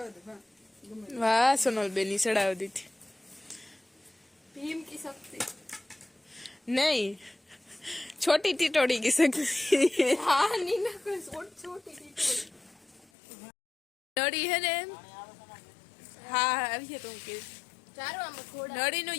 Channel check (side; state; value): right; drops out; at 13.1 s